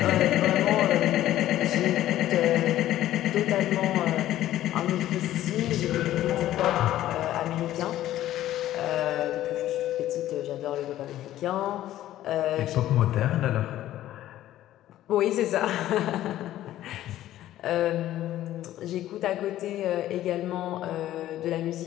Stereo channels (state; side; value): quieter; right; 13.5 dB